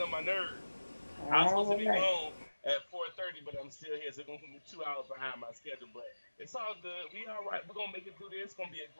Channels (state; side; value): inverted; both; correlation -1.00